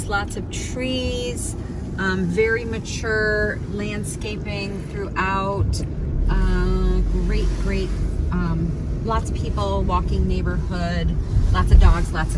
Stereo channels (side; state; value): both; identical; correlation 1.00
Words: lots of trees. Very mature landscaping throughout. Great. Lots of people, walking neighborhood, lots of dogs, lots